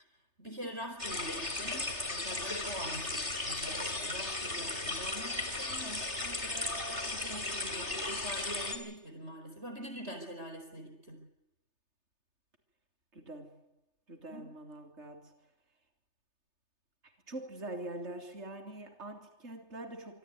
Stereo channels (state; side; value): late; left; 3.3 ms